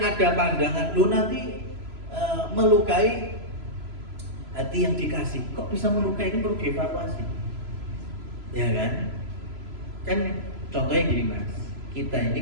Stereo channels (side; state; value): left; late; 3.0 ms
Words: pandangan lu nanti melukai hati yang dikasih, kok bisa melukai, ini perlu dievaluasi. Ya kan? Kan contohnya gini Mas, kita ini